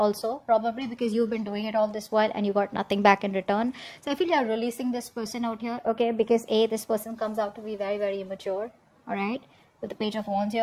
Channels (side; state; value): both; identical; correlation 1.00